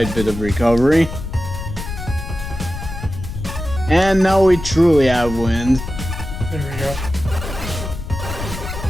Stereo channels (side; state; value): left; noise; rumble, 8 dB below the sound